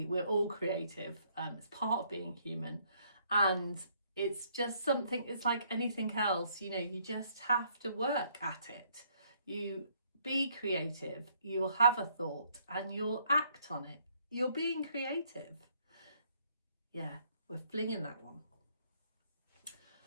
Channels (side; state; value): both; inverted; correlation -0.67